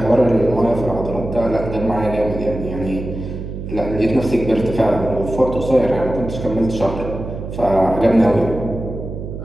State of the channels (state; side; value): noise; right; hum, 8 dB below the sound